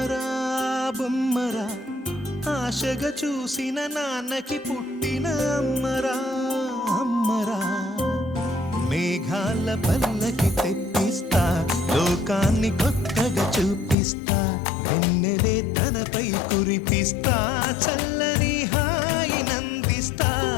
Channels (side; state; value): right; drops out; at 14.0 s